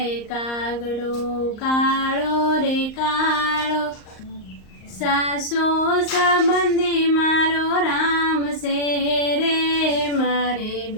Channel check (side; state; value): right; late; 38 ms